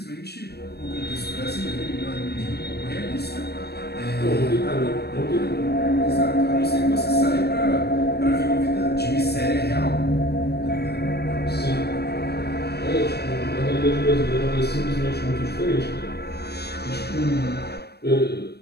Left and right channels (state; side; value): late; right; 0.47 ms